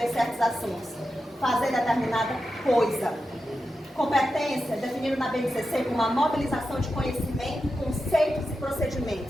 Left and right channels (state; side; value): normal; both; correlation 0.90